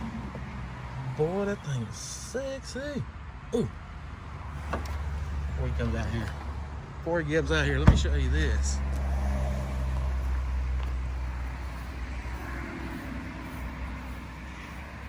Boy, that thing is sexy. Ooh. Before he comes out here. Before he gets out here, let me show you this.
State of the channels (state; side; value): identical; both; correlation 1.00